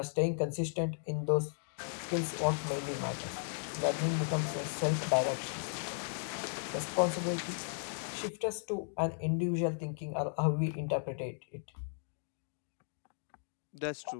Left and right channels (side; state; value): right; silent; digital silence